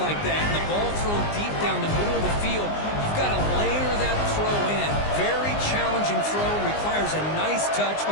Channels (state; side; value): late; right; 19 ms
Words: that and the ball thrown deep down the middle of the field, you've got to layer that throw in. Very challenging throw, requires a nice touch